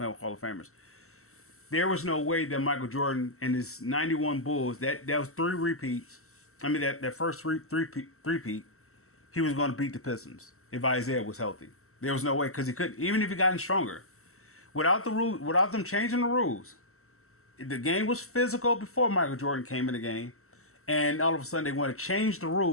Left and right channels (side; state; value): right; late; 0.63 ms